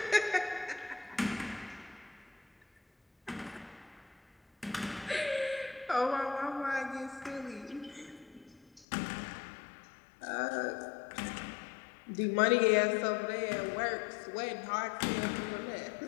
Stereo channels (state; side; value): drops out; right; at 8.8 s